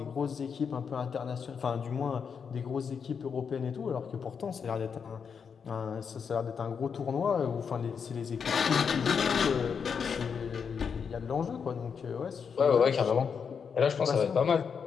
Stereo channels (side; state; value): right; quieter; 6.4 dB